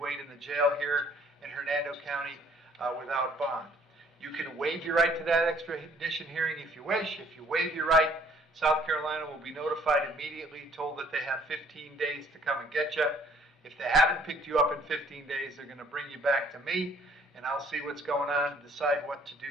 wait in the jail here in Hernando County without bond. You can waive your right to that extradition hearing if you wish. If you waive your right, South Carolina will be notified immediately, told that they have 15 days to come and get you. If they haven't picked you up in 15 days, they're going to bring you back to me, and I'll see what's going on and decide what to do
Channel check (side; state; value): both; normal; correlation 0.59